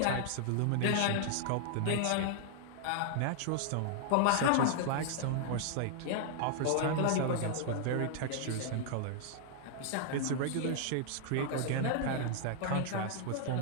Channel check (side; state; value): both; different; correlation 0.00